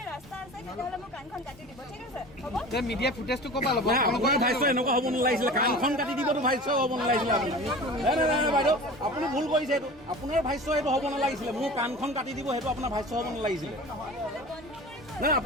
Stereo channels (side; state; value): both; normal; correlation 0.37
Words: ৰাস্তা আছে তেতিয়াহ'লে মোক কাণখন কাটি দিব ঠিক আছে হ'ব মিডিয়া ফুটেজটো ক'বা ল'ব আপোনাৰ ভাইছ এনেকুৱা হ'ব নালাগিছিলে কাণখন কাটি দিবতো ভাইছ হ'ব নালাগিছিলে আপুনি নাই নাই নাই বাইদেউ আপুনি ভুল কৰিছে এইটো আপোনাৰ ভাইছ এইটো হ'ব নালাগিছিলে মোৰ কাণখন কাটি দিব সেইটো আপোনাৰ ভাইছ হ'ব নালাগিছিলে নাই